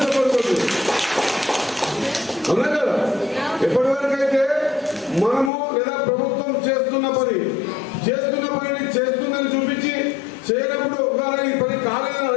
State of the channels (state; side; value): drops out; right; at 5.5 s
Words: చెప్పకూడదు, అవునా కదా? ఎప్పటి వరకు అయితే మనము లేదా ప్రభుత్వం చేస్తున్న పనిని చేస్తుందని చూపించి చేయనప్పుడు ఈ పని కాలేదని